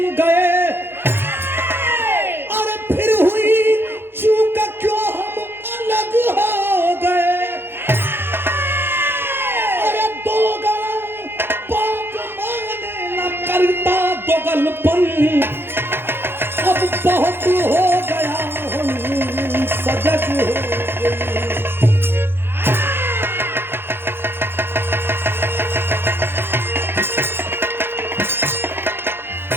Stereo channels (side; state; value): left; late; 0.11 ms